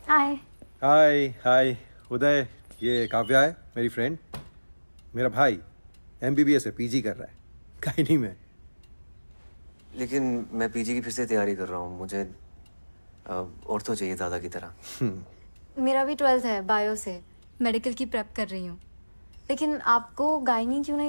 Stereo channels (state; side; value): inverted; both; correlation -1.00